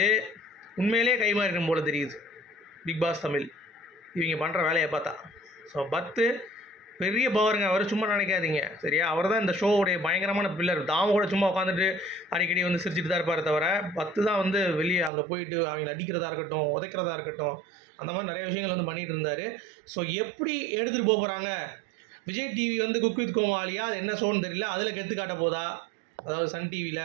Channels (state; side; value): drops out; left; at 15.1 s